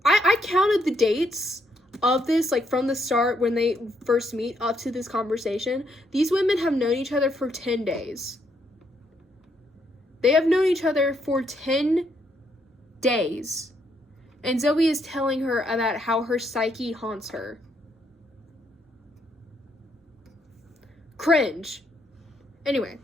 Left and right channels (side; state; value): both; normal; correlation 0.74